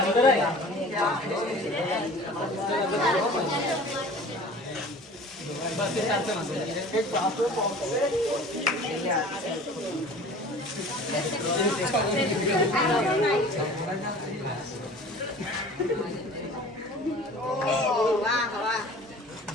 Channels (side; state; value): both; normal; correlation 0.44